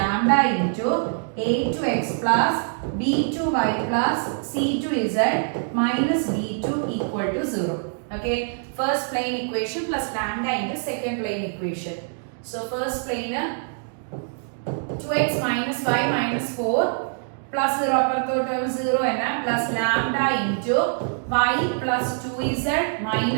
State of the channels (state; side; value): silent; left; 62 dB below the other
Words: into a2x plus b2y plus c2z minus d2 equal to 0. Okay, first plane equation plus lambda into second plane equation. So first plane 2x minus y minus 4 plus 0 അപ്പുറത്തോട്ട് 0 തന്നെ plus lambda into y plus 2z